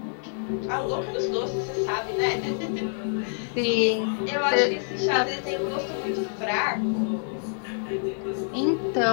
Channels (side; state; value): right; silent; 60 dB below the other